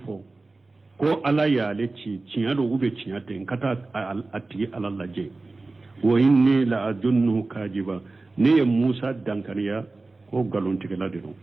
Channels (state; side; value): quieter; left; 3.4 dB